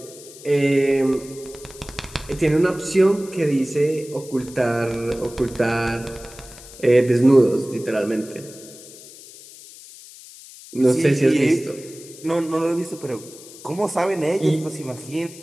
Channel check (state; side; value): noise; left; hiss, 18 dB below the sound